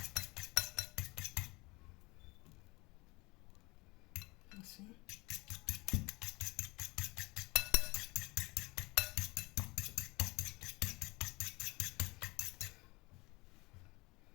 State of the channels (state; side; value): quieter; right; 24.4 dB